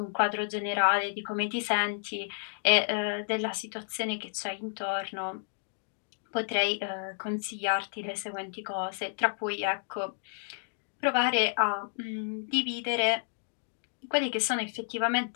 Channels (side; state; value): right; silent; digital silence